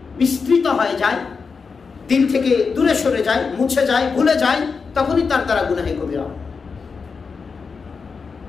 বিস্তৃত হয়ে যায়, দিল থেকে দূরে সরে যায়, মুছে যায়, ভুলে যায়, তখনই তার দ্বারা গুনাহে কবিরা হয়।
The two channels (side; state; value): right; quieter; 5.1 dB